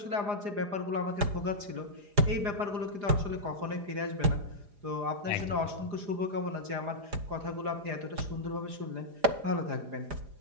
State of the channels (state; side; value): late; left; 4.9 ms